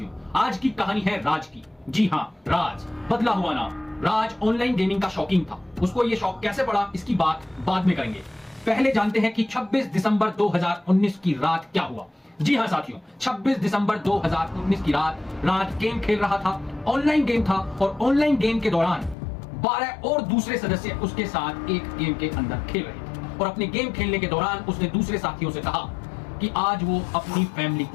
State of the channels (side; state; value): right; drops out; at 19.2 s